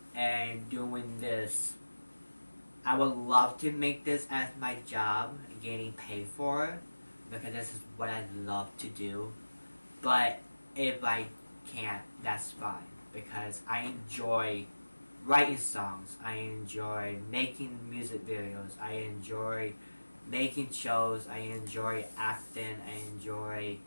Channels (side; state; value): both; inverted; correlation -1.00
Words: And doing this, I would love to make this as my job, getting paid for it, because this is what I love to do. But if I can't, that's fine, because I enjoy writing songs, I enjoy making music videos, I enjoy making shows, I enjoy acting, I enjoy